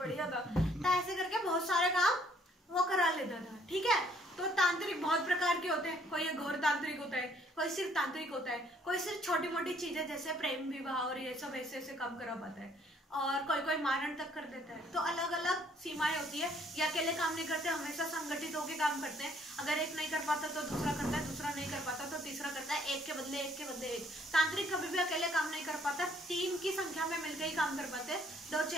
था। तो ऐसे करके बहुत सारे काम वो करा लेता था, ठीक है। तो तांत्रिक बहुत प्रकार के होते हैं, कोई घोर तांत्रिक होता है, कोई सिर्फ तांत्रिक होता है, कोई सिर्फ छोटी मोटी चीजें जैसे प्रेम विवाह और ये सब ऐसे ऐसे काम करा पाता है, और कोई मारण तक कर देता है। तो अलग अलग सीमाएं होती है। ये अकेले काम नहीं करते, हमेशा संगठित होकर काम करते हैं। अगर एक नहीं कर पाता तो दूसरा करता है, दूसरा नहीं कर पाता तो तीसरा एक के बदले एक के बदले एक। तांत्रिक कभी भी अकेले काम नहीं कर पाता, 3 की संख्या में मिलकर ही काम कर पाते, 2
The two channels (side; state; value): both; normal; correlation 0.63